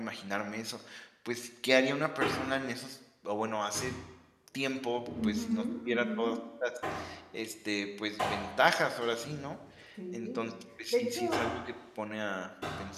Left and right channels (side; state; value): both; identical; correlation 1.00